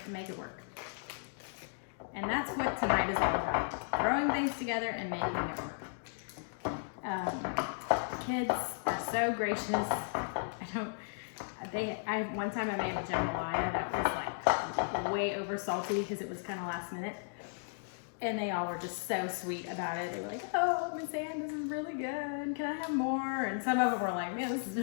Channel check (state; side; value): silent; right; digital silence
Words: and make it work. And that's what tonight is all about. Throwing things together and making it work. Kids are so gracious. One time I made a jambalaya that was like way over salty because it was kind of last minute. And they all were just so sweet about it. They were like, oh, Miss Ann, this is really good. Can I have more? And some of them were like, man, this is